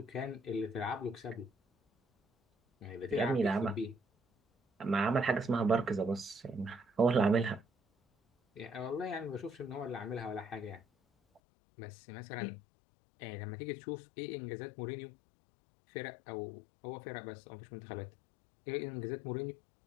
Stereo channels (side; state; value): right; drops out; at 11.4 s